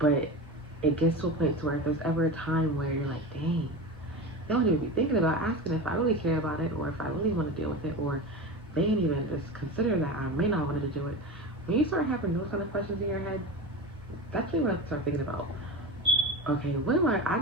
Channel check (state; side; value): normal; both; correlation 0.26